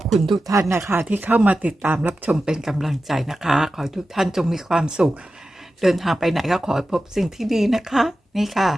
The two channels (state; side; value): normal; both; correlation 0.93